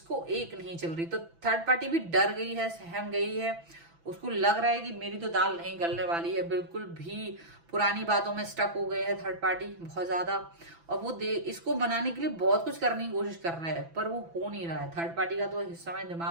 एक नहीं चल रही। तो थर्ड पार्टी भी डर गई है, सहम गई है, उसको लग रहा है कि मेरी तो दाल नहीं गलने वाली है। बिल्कुल भी पुरानी बातों में स्टक हो गए है थर्ड पार्टी बहुत ज्यादा, और वो इसको बनाने के लिए बहुत कुछ करने की कोशिश कर रहा है, पर वो हो नहीं रहा है। थर्ड पार्टी का तो इस समय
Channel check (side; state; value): left; late; 6.0 ms